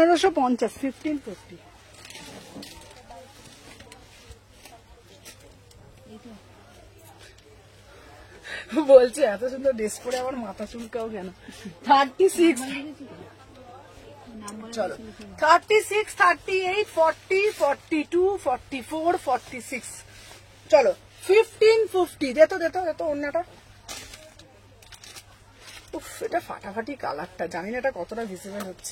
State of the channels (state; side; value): identical; both; correlation 1.00